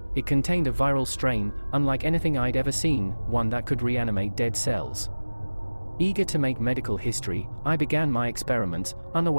It contained a viral strain, unlike anything I'd ever seen, one that could reanimate dead cells. Eager to make medical history, I began my experiments,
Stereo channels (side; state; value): both; inverted; correlation -1.00